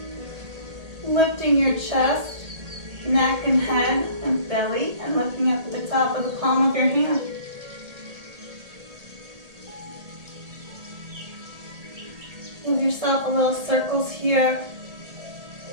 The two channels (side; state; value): left; late; 1.8 ms